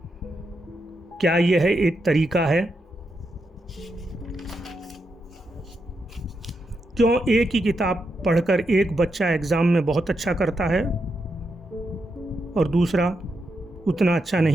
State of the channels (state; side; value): normal; both; correlation 0.84